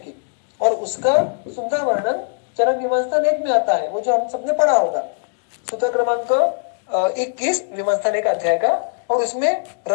और उसका सुंदर वर्णन चरक विमंस्थन 1 में आता है, वो जो हम सबने पढ़ा होगा, सूत्र क्रमांक 21 विमंस्थन 1 अध्याय का, और उसमें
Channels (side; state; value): right; silent; digital silence